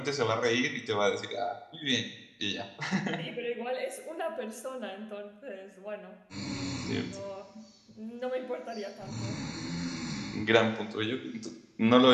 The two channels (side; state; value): both; identical; correlation 1.00